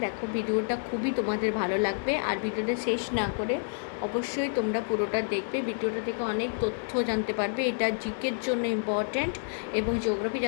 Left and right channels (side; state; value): right; silent; digital silence